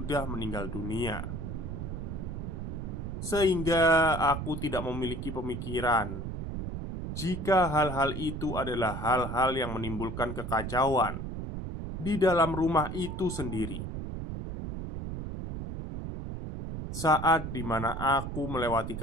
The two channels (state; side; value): noise; right; rumble, 6 dB below the sound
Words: meninggal dunia. Sehingga aku tidak memiliki pemikiran jika hal-hal itu adalah hal-hal yang menimbulkan kekacauan di dalam rumah itu sendiri. Saat dimana aku melewati